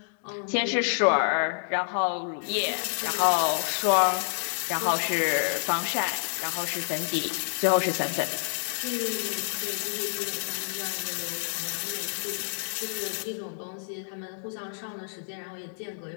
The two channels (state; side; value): silent; right; 59 dB below the other